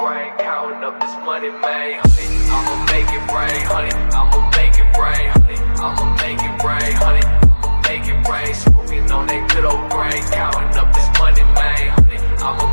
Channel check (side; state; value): both; inverted; correlation -1.00